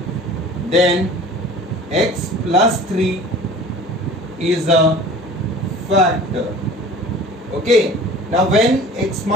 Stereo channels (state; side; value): normal; both; correlation 0.43